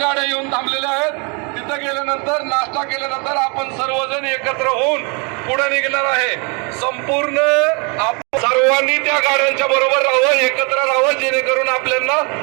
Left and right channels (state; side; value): quieter; left; 33.1 dB